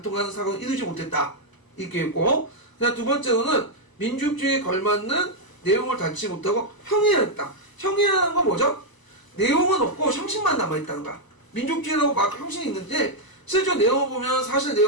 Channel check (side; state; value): right; late; 1.0 ms